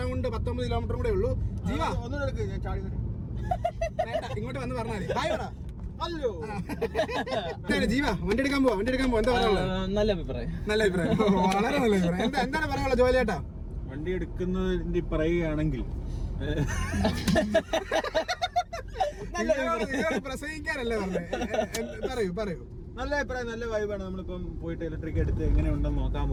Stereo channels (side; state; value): both; identical; correlation 1.00